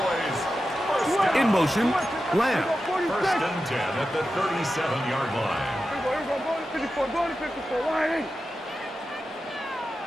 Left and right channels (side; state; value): both; normal; correlation 0.91